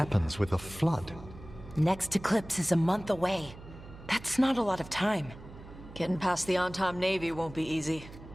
with a flood? Next eclipse is a month away. That's not a lot of time. Getting past the on-time Navy won't be easy.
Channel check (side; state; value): right; noise; hum, 17 dB below the sound